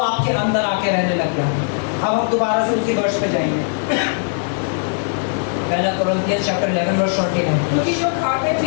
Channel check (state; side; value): silent; right; digital silence